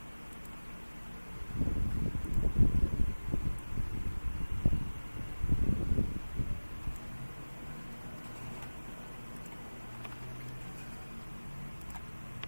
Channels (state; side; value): inverted; both; correlation -1.00